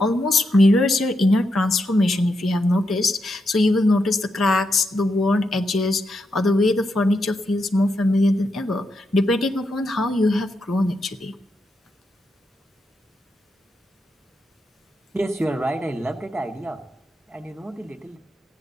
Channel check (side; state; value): both; normal; correlation 0.84